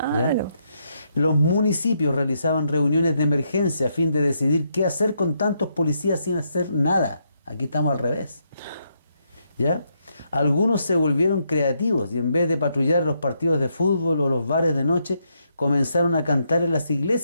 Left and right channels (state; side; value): inverted; both; correlation -0.78